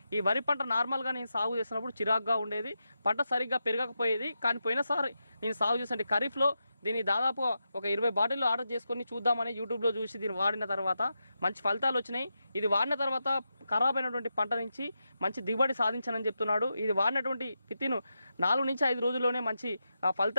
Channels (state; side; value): inverted; both; correlation -0.88